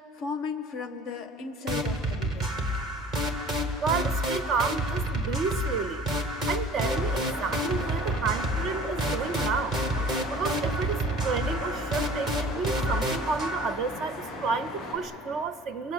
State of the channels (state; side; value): normal; both; correlation 0.47